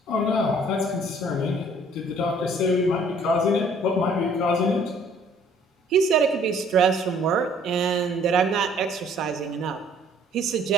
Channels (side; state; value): both; normal; correlation 0.58